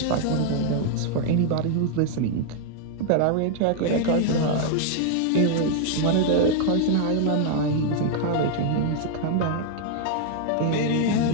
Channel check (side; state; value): both; different; correlation 0.00